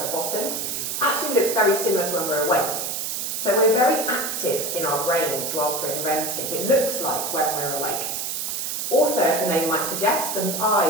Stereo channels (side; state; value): right; noise; hiss, 3 dB below the sound